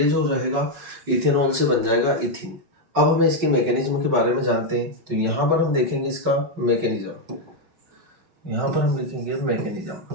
जो रहेगा इथेनॉल से बन जाएगा इथीन। अब हमें इसके मैकेनिज्म के बारे में जानते हैं। तो यहाँ पर हम देखेंगे इसका मैकेनिज्म, यहाँ पर हम लिखेंगे मैकेनिज्म।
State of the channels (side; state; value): left; late; 5.4 ms